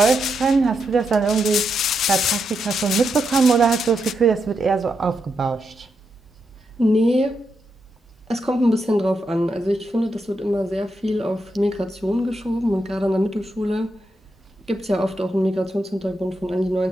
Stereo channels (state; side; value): normal; both; correlation 0.83